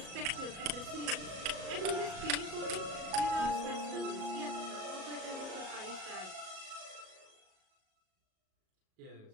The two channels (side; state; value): left; late; 37 ms